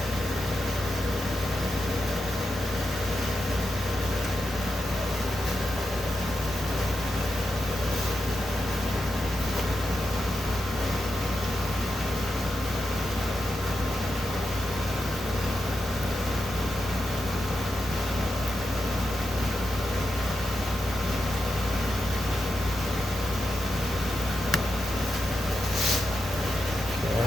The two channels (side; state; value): both; normal; correlation 0.87